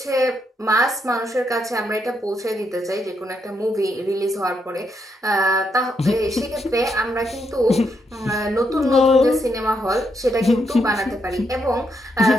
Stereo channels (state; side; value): normal; both; correlation 0.79